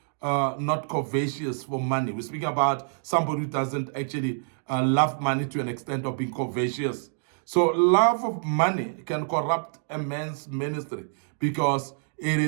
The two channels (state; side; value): silent; left; digital silence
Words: not covetous for money. We're speaking about somebody who doesn't actually love money to an extent of being covetous. So love of money can corrupt a man's ministry because it